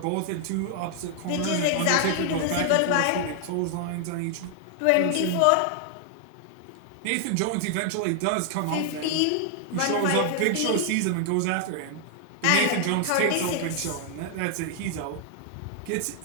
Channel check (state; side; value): different; both; correlation 0.00